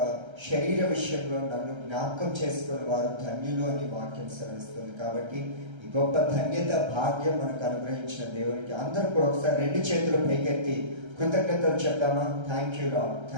శరీర విషయంలో నన్ను జ్ఞాపకం చేసుకున్న వారు ధన్యులు అని వాక్యం సెలవిస్తుంది. కాబట్టి ఈ గొప్ప ధన్యత, భాగ్యం మనకు అనుగ్రహించిన దేవునికి అందరూ కూడా ఒకసారి 2 చేతులు పైకెత్తి కృతజ్ఞతలు చెప్తామా? Thank you Lord,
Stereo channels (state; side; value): late; left; 1.3 ms